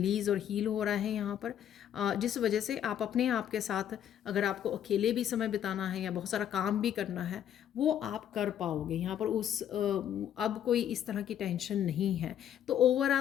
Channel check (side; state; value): right; quieter; 10.0 dB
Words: और हील हो रहा है यहाँ पर, जिस वजह से आप अपने आप के साथ, अगर आपको अकेले भी समय बिताना है या बहुत सारा काम भी करना है, वो आप कर पाओगे यहाँ पर। अब कोई इस तरह की टेंशन नहीं है। तो